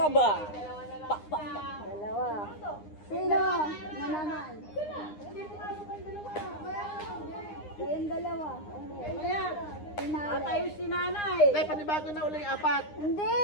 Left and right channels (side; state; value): right; late; 9.8 ms